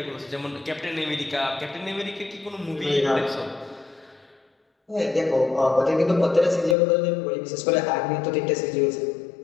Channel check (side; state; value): right; drops out; at 6.8 s